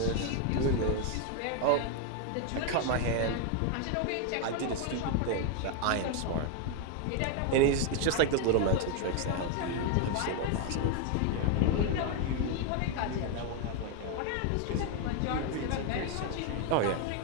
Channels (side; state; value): both; different; correlation 0.01